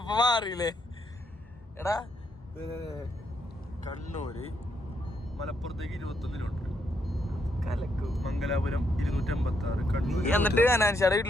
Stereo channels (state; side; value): normal; both; correlation 0.77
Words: മാറിയില്ലേ? എടാ കണ്ണൂര് മലപ്പുറത്തേക്ക് 21 കിലോമീറ്റർ, കലക്കു. മംഗലാപുരം 256, കണ്ണൂർ. എന്നിട്ട് അനാൻഷാടെ